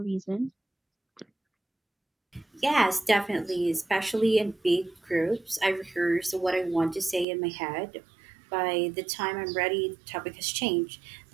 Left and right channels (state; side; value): drops out; left; at 7.2 s